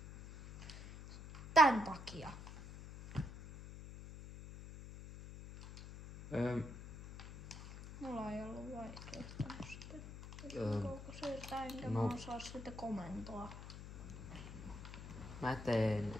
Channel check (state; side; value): noise; left; hum, 12 dB below the sound